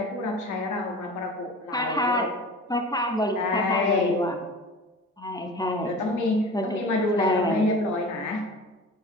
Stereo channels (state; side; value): normal; both; correlation 0.37